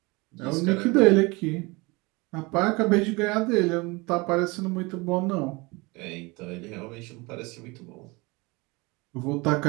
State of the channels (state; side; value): quieter; left; 25.4 dB